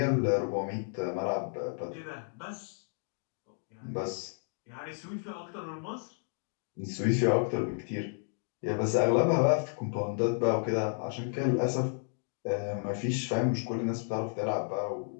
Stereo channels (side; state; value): right; silent; 56 dB below the other